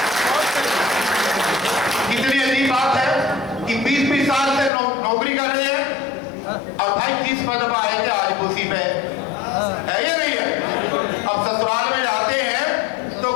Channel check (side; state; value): right; drops out; at 4.7 s